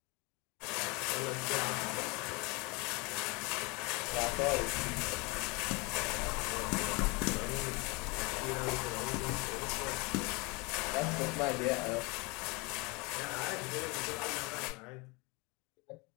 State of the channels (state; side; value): quieter; right; 27.7 dB